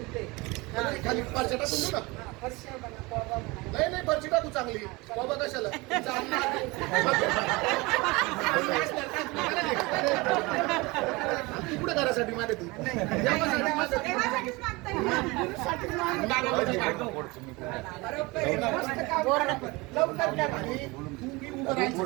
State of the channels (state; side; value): quieter; left; 24.2 dB